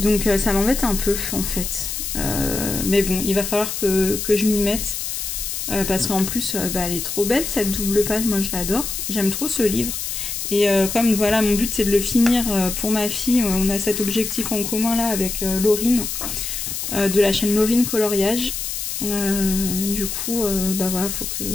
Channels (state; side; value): noise; left; hiss, 4 dB below the sound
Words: ça m'embête un peu en fait. Mais bon, il va falloir que je m'y mette. Parce qu'en plus, elle est trop belle cette double page, moi je l'adore. J'aime trop ce livre. Et comme voilà, mon but c'est de le finir pour ma fille, on a cet objectif en commun là avec Laurine, de la chaîne Laurine Coloriage. Du coup, bah voilà, faut